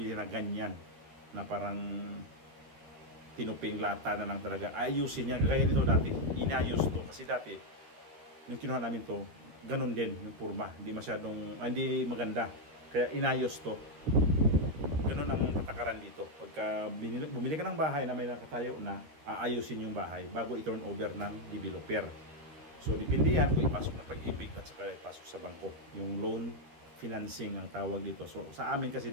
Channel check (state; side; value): late; left; 13 ms